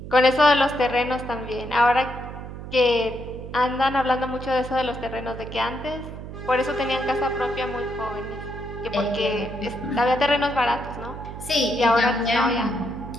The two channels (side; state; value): right; noise; hum, 10 dB below the sound